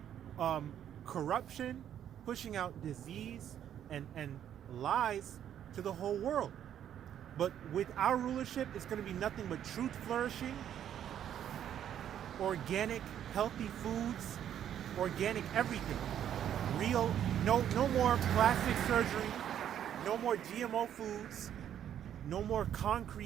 corruption, pushing out disease and lies to the whole world. But with our rulership, it's going to be nothing but truth flourishing, organic, healthy foods, organic everything. Real, no more plastic surgery, no more GMO foods, no more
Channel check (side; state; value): left; quieter; 10.1 dB